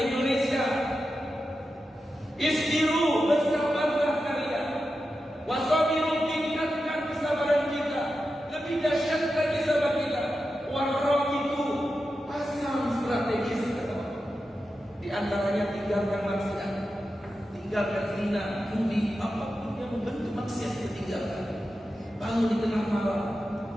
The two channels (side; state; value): both; normal; correlation 0.90